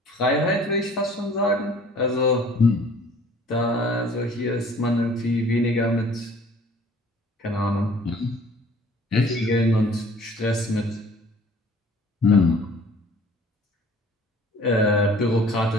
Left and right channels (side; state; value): both; normal; correlation 0.52